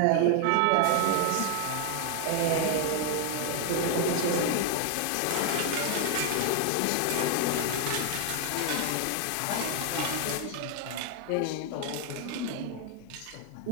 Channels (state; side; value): different; both; correlation 0.01